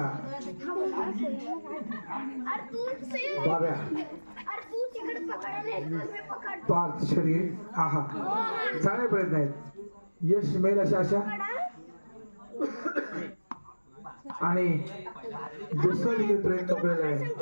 बाब्या पार्थ शरीर हा हा चांगले प्रयत्न आहेत. यश मिळेल अशा आशा. आणि दुसरा देखील प्रयत्न केलेला आहे.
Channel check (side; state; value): both; inverted; correlation -1.00